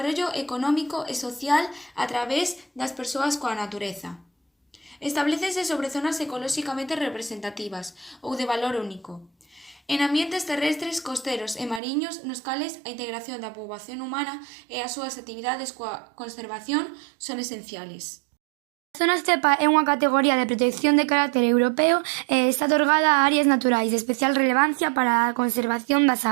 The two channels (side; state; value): left; drops out; at 11.8 s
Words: económico e social a través das persoas coa natureza. Establécense sobre zonas ecolóxicamente representativas ou de valor único, en ambientes terrestres, costeros e mariños nos cales a integración da poboación humana e as súas actividades coa conservación son esenciales. A zona estepa é unha categoría de protección de carácter europeo e está otorgada a áreas naturais de especial relevancia para a conservación das